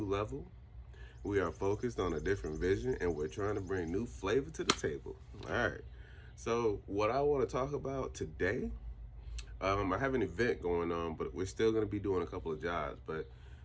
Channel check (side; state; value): both; identical; correlation 1.00